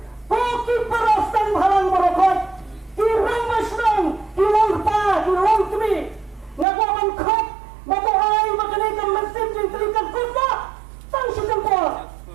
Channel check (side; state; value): left; drops out; at 6.7 s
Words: Koki perasaan halang merokot. Kirang masnong, kilong pa, kilong kami. Ngaku aman kop, batu ay makanikan mesin jeng telikan kuda. Tang si tempor.